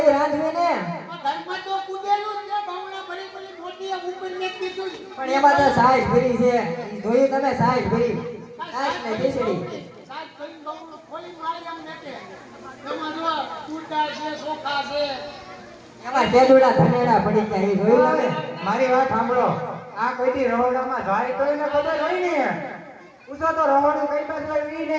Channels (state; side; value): identical; both; correlation 1.00